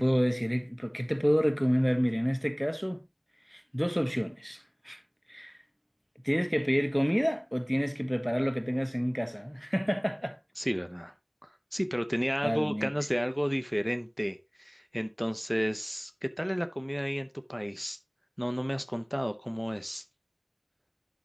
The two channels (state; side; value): identical; both; correlation 1.00